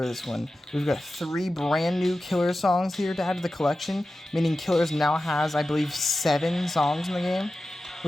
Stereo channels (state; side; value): normal; both; correlation 0.94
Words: this one. We've got 3 brand new Killers songs here to add to the collection, meaning Killers now has, I believe, 7 songs in the game,